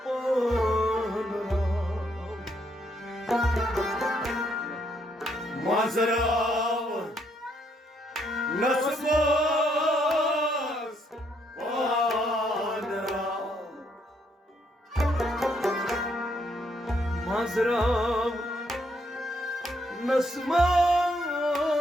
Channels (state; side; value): normal; both; correlation 0.73